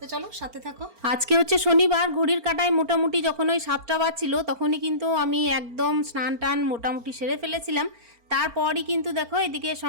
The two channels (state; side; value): late; left; 4.4 ms